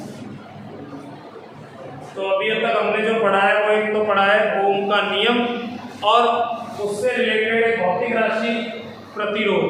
तो अभी तक हमने जो पढ़ा है वो एक तो पढ़ा है ओम का नियम, और उससे रिलेटेड एक भौतिक राशि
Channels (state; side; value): identical; both; correlation 1.00